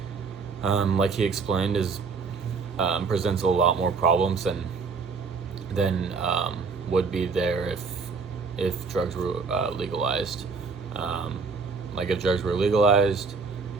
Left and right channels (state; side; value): quieter; left; 4.8 dB